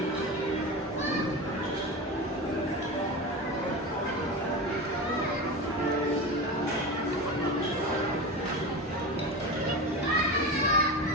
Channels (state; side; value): normal; both; correlation 0.25